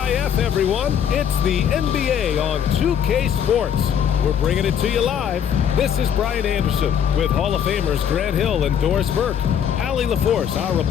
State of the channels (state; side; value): quieter; right; 8.6 dB